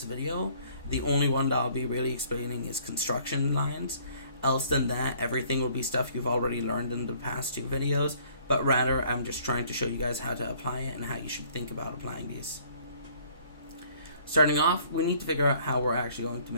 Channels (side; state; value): both; inverted; correlation -0.59